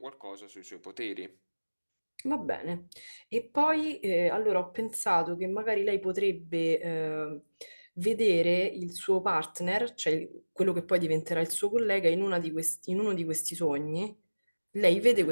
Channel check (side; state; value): both; inverted; correlation -1.00